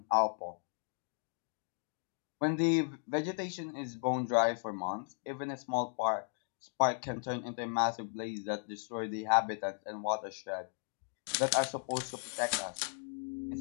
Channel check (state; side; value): silent; right; 54 dB below the other